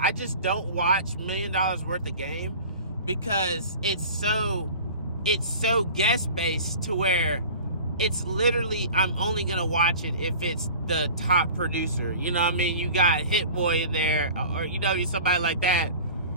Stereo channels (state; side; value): inverted; both; correlation -0.40